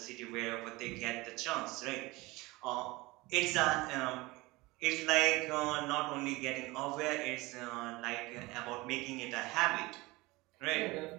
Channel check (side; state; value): left; quieter; 21.9 dB